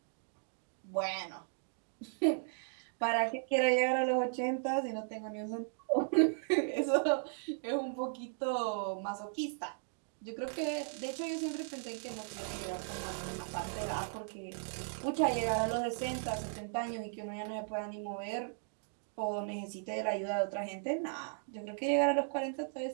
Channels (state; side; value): silent; left; digital silence